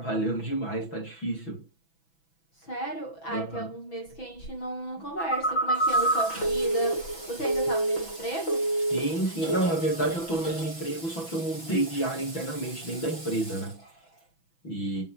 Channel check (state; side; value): late; right; 6.1 ms